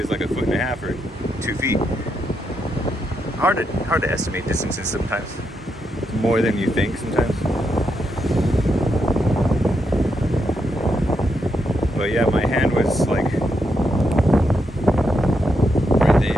like 1.5 feet or 2 feet. Hard to estimate distances sometimes. More than you think sometimes. But yeah, my hand was like right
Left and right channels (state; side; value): normal; both; correlation 0.82